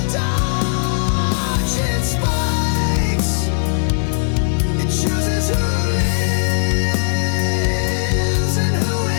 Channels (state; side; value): silent; right; digital silence